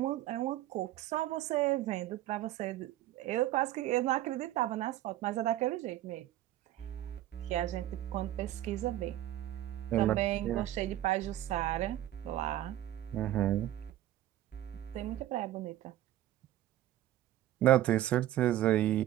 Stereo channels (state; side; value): quieter; left; 13.6 dB